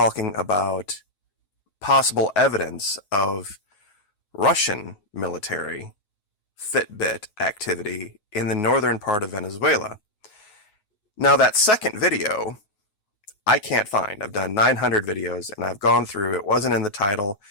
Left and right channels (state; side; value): late; right; 9.4 ms